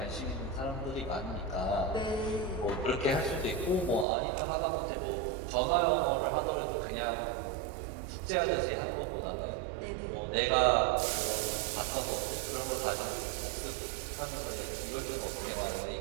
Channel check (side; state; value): left; drops out; at 4.0 s